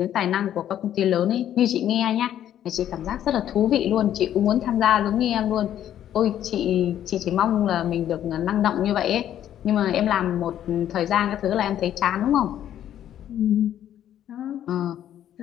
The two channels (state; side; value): quieter; right; 11.0 dB